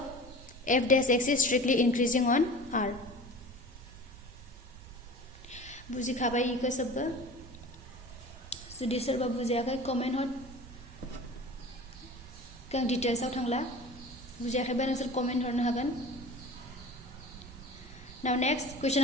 f dash x is strictly increasing on R. बुझी खाबाई eco सब जुदि सोरबा बुजियाखै comment हर गां details आव थांला बुजियाखैबा नोंसोर comment हरनो हागोन. Now next question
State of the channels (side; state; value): right; noise; rumble, 16 dB below the sound